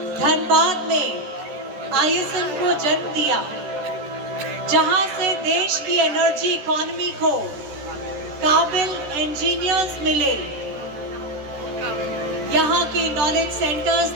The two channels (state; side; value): late; left; 14 ms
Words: धनबाद में आईएसएम को जन्म दिया, जहां से देश की एनर्जी इकोनॉमी को काबिल इंजीनियर्स मिले। यहाँ के नॉलेज सेंटर्स